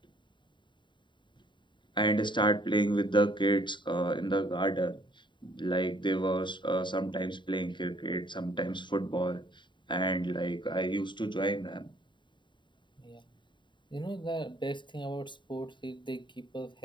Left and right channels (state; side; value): late; right; 0.23 ms